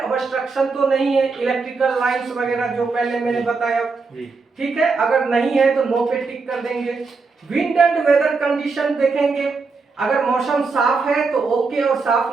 ऑब्स्ट्रक्शन तो नहीं है, इलेक्ट्रिकल लाइंस वगैरह जो पहले मैंने बताया, ठीक है। अगर नहीं है तो नो पे टिक कर देंगे। विंड एंड वेदर कंडीशन देखेंगे, अगर मौसम साफ है तो ओके और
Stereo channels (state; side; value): quieter; left; 4.4 dB